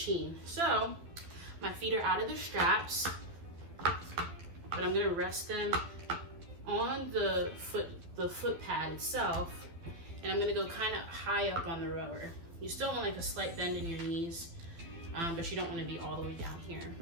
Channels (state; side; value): late; left; 12 ms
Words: So my feet are out of the straps, but I'm gonna rest them on the foot pad itself, and I'm gonna go kind of high up on the rower. You still want like a slight bend in your knees, but you don't want to be all the way down here.